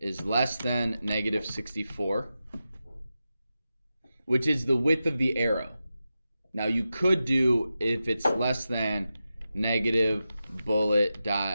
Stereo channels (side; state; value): both; inverted; correlation -0.91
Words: less than negative 64, which is the width of the arrow. Now you could do if it's less than negative bullet